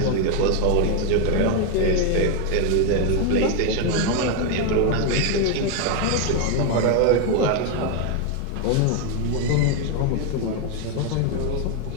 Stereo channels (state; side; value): different; both; correlation 0.01